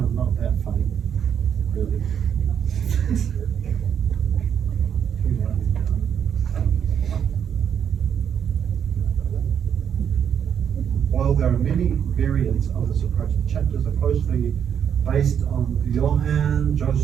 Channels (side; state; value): left; quieter; 8.2 dB